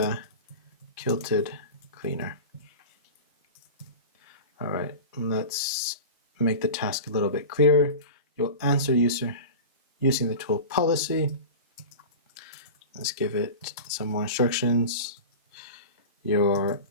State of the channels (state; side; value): inverted; both; correlation -0.31